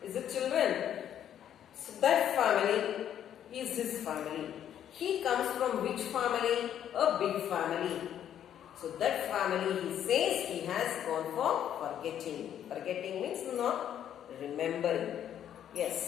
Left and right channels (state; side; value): quieter; right; 10.1 dB